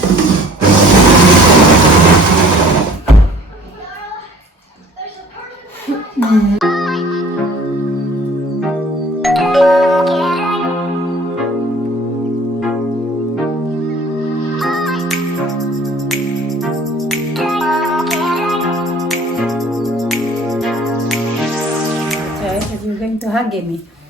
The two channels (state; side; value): normal; both; correlation 0.50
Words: You're going to hug me.